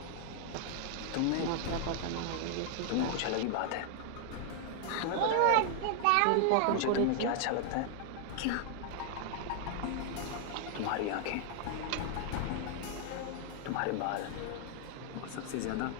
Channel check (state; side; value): different; both; correlation 0.00